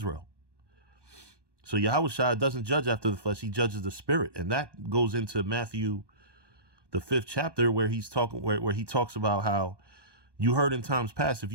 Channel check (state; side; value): late; left; 1.2 ms